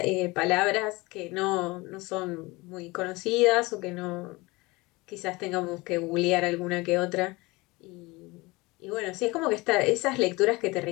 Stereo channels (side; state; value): right; quieter; 23.1 dB